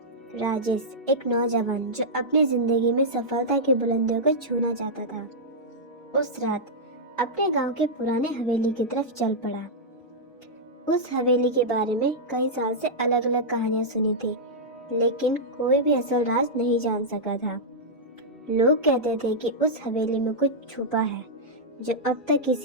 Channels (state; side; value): normal; both; correlation -0.08